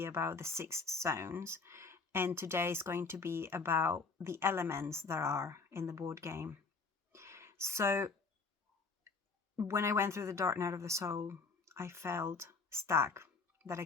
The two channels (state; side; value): quieter; right; 4.5 dB